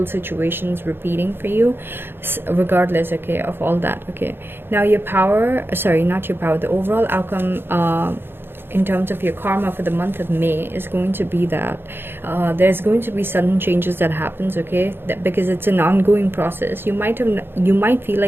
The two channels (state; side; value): late; left; 0.10 ms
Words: situations repeating for you, regardless, okay, of all that, okay? Now your power, sorry, not your power, the overall outcome in terms of your karma for the month of May is going to be that there's going to be sudden changes that happens, okay? That, because it's an ongoing process, you might feel